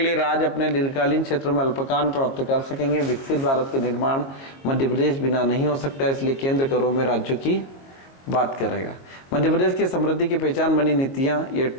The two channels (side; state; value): right; late; 23 ms